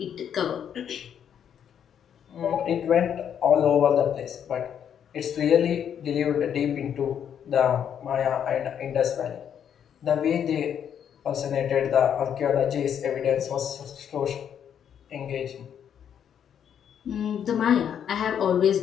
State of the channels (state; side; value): quieter; right; 8.7 dB